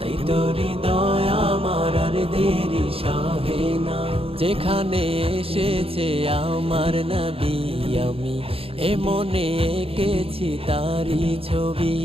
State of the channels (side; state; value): left; late; 0.27 ms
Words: তোরি দয়া আমার আর দেরি সহে না। যেখানে এসেছে আমার নবী, আমি এ মনে এঁকেছি তারি ছবি।